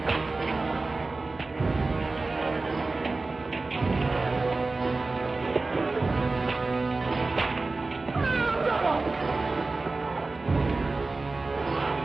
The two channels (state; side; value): quieter; left; 3.5 dB